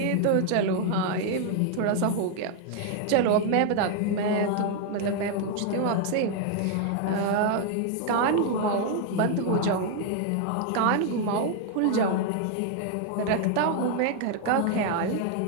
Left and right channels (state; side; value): different; both; correlation 0.00